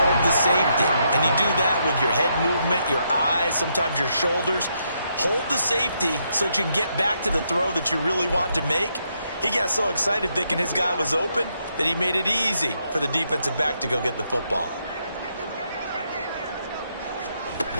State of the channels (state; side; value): inverted; both; correlation -0.77